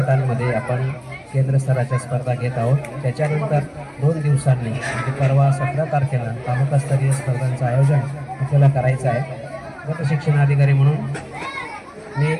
आपण केंद्र स्तराच्या स्पर्धा घेत आहोत। त्याच्यानंतर 2 दिवसांनी म्हणजे परवा 17 तारखेला तालुकास्तरीय स्पर्धांचं आयोजन आपल्याला करायचं आहे। गट शिक्षण अधिकारी म्हणून मी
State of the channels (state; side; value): identical; both; correlation 1.00